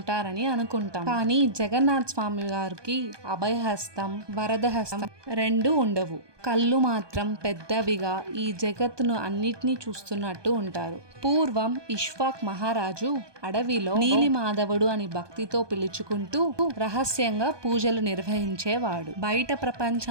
అనుకుంటాం. కానీ జగన్నాథ్ స్వామి గారికి అభయహస్తం, వరద హస్తం రెండు ఉండవు. కళ్ళు మాత్రం పెద్దవిగా ఈ జగత్తును అన్నిటినీ చూస్తున్నట్టు ఉంటారు. పూర్వం ఇష్వాక్ మహారాజు అడవిలో నీలిమాధవుడు అని భక్తితో పిలుచుకుంటూ రహస్యంగా పూజలు నిర్వహించేవాడు. బయట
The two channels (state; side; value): late; left; 1.2 ms